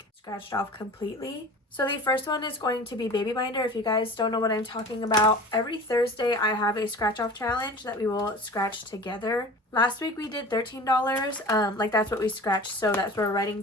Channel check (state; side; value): normal; both; correlation 0.39